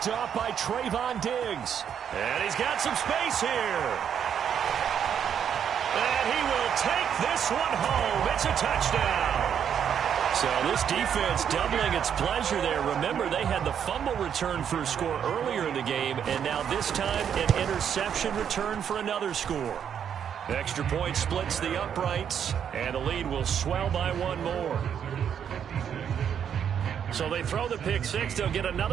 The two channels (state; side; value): quieter; left; 8.4 dB